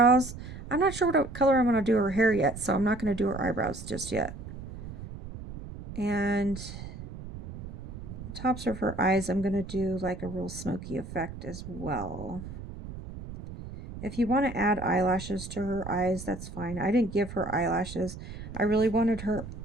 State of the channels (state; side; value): noise; right; rumble, 11 dB below the sound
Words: I'm not sure what color I'm going to do her hair yet, so I'm not going to do her eyebrows just yet. And the tops of her eyes, I'm going to do like a real smoky effect as well. If you want to add eyelashes to her eyes, that's fine. I didn't give her eyelashes. I really wanted her